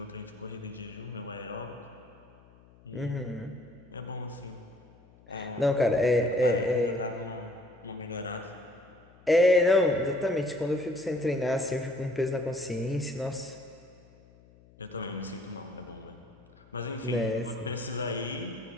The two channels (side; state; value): left; noise; hum, 26 dB below the sound